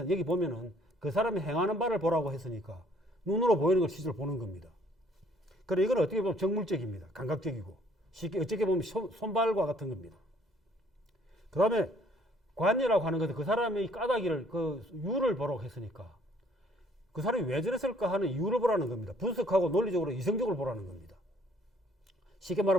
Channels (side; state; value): both; normal; correlation 0.61